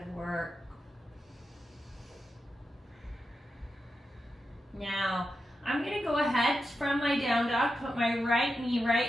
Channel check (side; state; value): both; normal; correlation 0.89